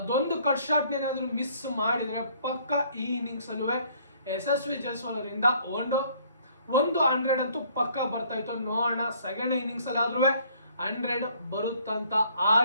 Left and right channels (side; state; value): both; inverted; correlation -0.61